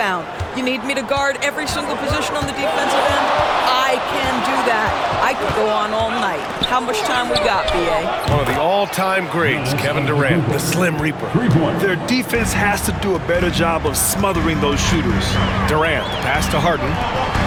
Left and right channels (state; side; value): identical; both; correlation 1.00